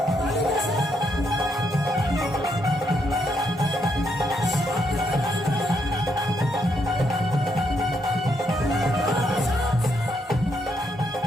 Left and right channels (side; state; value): both; normal; correlation 0.77